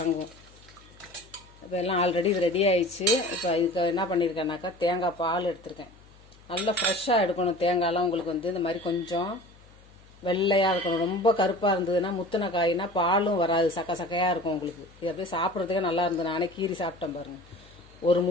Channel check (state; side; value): noise; left; hum, 25 dB below the sound